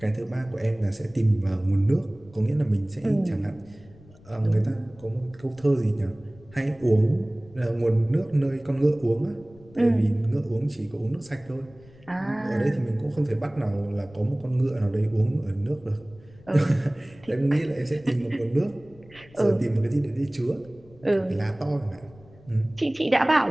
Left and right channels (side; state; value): left; noise; rumble, 24 dB below the sound